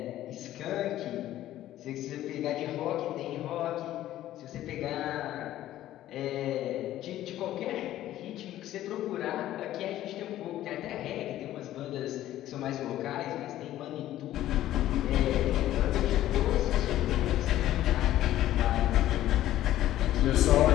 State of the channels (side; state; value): right; quieter; 13.5 dB